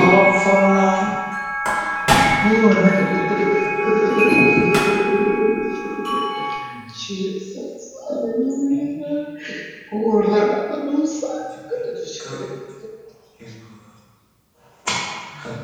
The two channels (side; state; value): both; identical; correlation 1.00